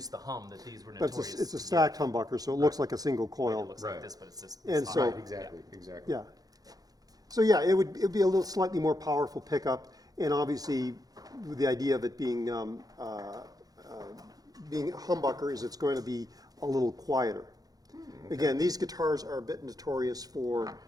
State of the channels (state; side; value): late; left; 0.18 ms